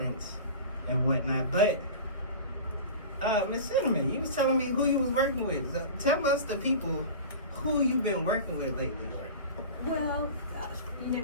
and whatnot. But, Miss Cynnamyn, you was telling me who you was working with. So tell us, the people, who you've been working with lately. Well, you know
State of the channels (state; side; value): inverted; both; correlation -0.34